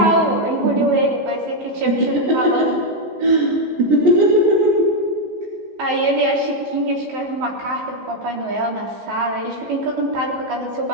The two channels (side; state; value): left; late; 14 ms